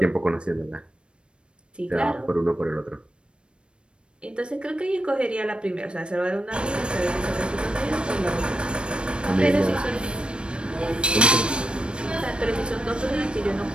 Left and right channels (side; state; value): left; late; 0.056 ms